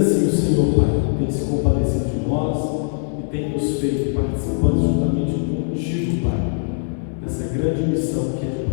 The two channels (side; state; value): right; silent; digital silence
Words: o Senhor, Pai, tem se compadecido de nós e tem nos feito participantes juntamente contigo, Pai, dessa grande missão que é de